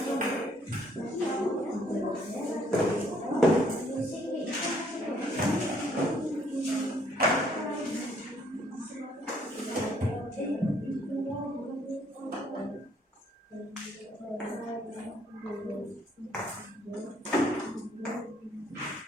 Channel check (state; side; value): normal; both; correlation 0.65